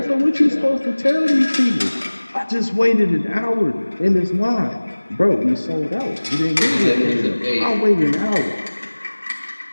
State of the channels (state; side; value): inverted; both; correlation -1.00